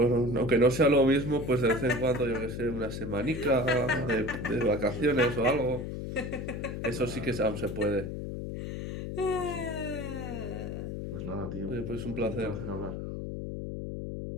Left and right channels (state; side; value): noise; left; hum, 6 dB below the sound